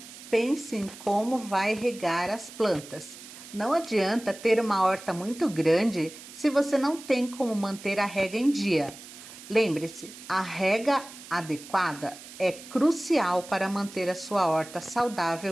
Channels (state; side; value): noise; right; hiss, 16 dB below the sound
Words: Pense em como vai regar as plantas. Não adianta ter uma horta muito grande se você não tem como manter a rega em dia. Lembre-se, a rega adequada é crucial para manter a sua horta